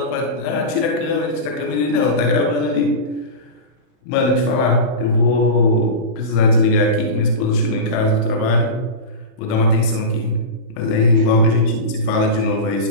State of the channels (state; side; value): late; right; 31 ms